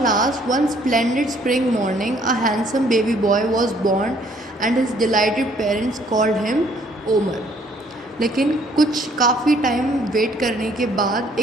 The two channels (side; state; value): both; normal; correlation 0.62